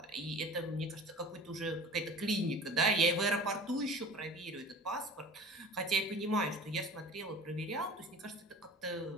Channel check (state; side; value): normal; both; correlation 0.40